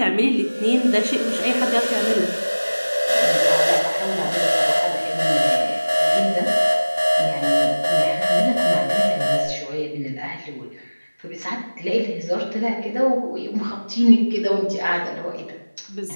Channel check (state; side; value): inverted; both; correlation -1.00